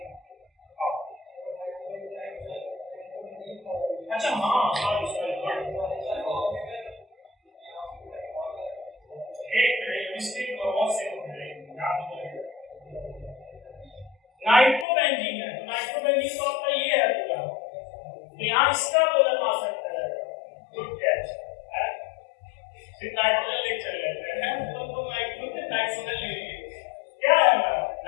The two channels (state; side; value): drops out; right; at 14.9 s